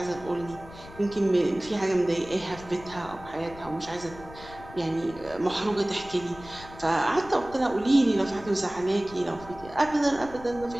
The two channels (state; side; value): noise; left; rumble, 17 dB below the sound